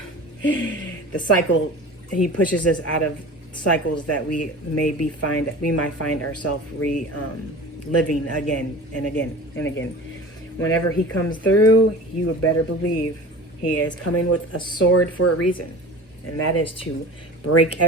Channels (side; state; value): both; normal; correlation 0.37